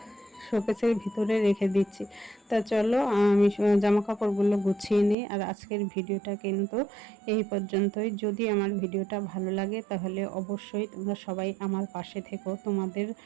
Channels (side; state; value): left; drops out; at 5.2 s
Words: শোকেসের ভিতরে রেখে দিচ্ছি। তা চলো আমি জামা কাপড়গুলো গুছিয়ে নিই। আর আজকের ভিডিওটা কিন্তু এই পর্যন্তই। যদি আমার ভিডিওটা ভালো লাগে তাহলে অবশ্যই তোমরা সবাই আমার পাশে থেকো। তোমাদের